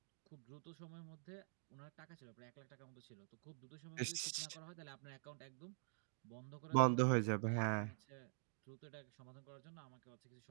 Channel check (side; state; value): left; silent; digital silence